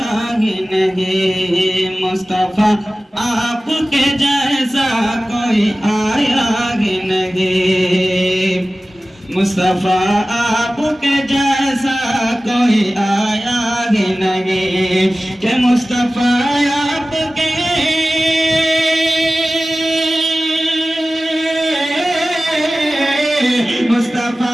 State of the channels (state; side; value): normal; both; correlation 0.96